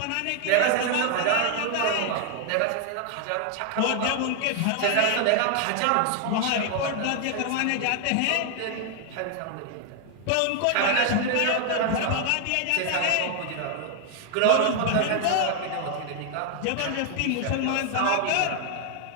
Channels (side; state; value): both; different; correlation 0.00